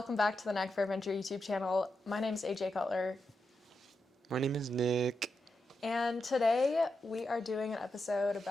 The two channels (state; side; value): normal; both; correlation 0.86